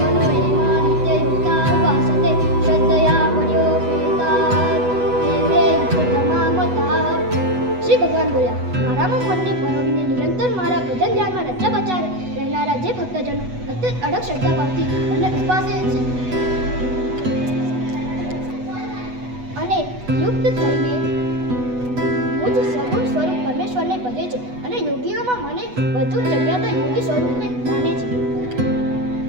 મનો એમાં નિત્યયુક્તા ઉપાસતે શ્રદ્ધયા પર્યોપેતા તે તમામતા. શ્રી ભગવાન બોલ્યા, મારામાં મનને પરોવીને નિરંતર મારા ભજન ધ્યાનમાં રચ્યા પચ્યા રહેનારા જે ભક્તજનો અત્યંત અડગ શ્રદ્ધાભાવથી મને ઉપાસે છે અને યુક્ત થઈને મુજ સગુણ સ્વરૂપ પરમેશ્વરને ભજે છે અને યોગીઓમાં મને વધુ જગ્યાતા યોગી સ્વરૂપને માને છે.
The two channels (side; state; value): left; late; 8.1 ms